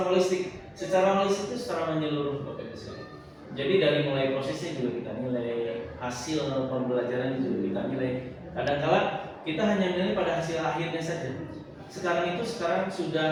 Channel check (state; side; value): identical; both; correlation 1.00